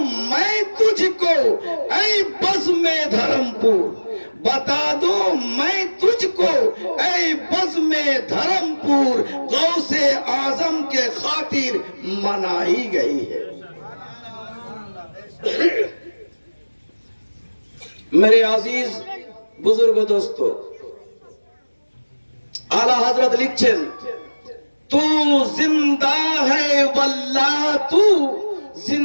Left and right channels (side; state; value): both; inverted; correlation -1.00